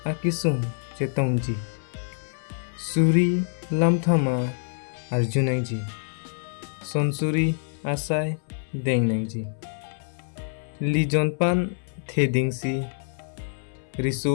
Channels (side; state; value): right; silent; 61 dB below the other